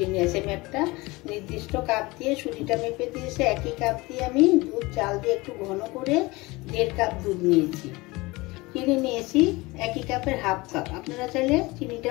নিয়েছি। আমি একটা নির্দিষ্ট কাপ দিয়ে সুজিটা মেপে দিয়েছি। একই কাপ দিয়ে আমি দুধ চাল দিয়ে একটু ঘন করে 1.5 কাপ দুধ নিয়েছি। চিনি নিয়েছি একই কাপের হাফ কাপ। আপনারা চাইলে চিনিটা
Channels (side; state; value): right; quieter; 22.5 dB